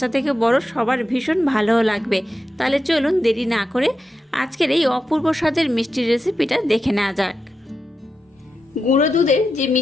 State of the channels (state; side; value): normal; both; correlation 0.89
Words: থেকে বড় সবার ভীষণ ভালোও লাগবে। তাহলে চলুন দেরি না করে আজকের এই অপূর্ব স্বাদের মিষ্টির রেসিপিটা দেখে নেওয়া যাক। গুঁড়ো দুধের যে